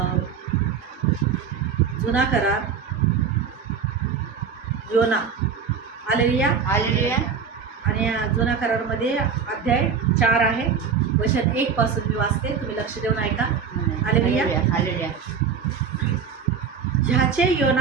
जुना करार योना. हालेलुया. हालेलुया. आणि या जुना करारमध्ये अध्याय 4 आहे, वचन 1 पासून मी वाचते, तुम्ही लक्ष देऊन ऐका. हालेलुया. हालेलुया. ह्याचे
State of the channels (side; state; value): left; quieter; 6.4 dB